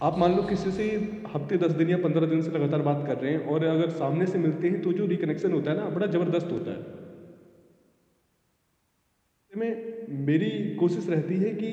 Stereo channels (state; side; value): identical; both; correlation 1.00